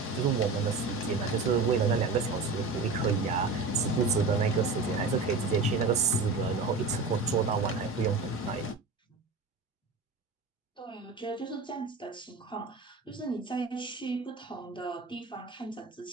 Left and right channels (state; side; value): quieter; left; 3.8 dB